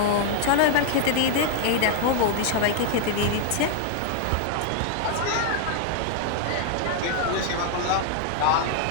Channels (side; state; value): both; different; correlation 0.00